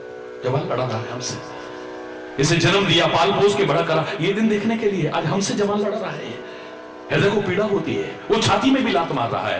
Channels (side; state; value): both; identical; correlation 1.00